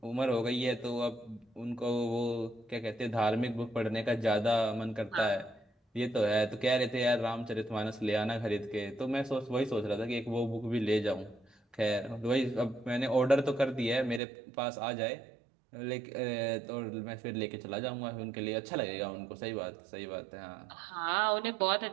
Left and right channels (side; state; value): left; drops out; at 14.2 s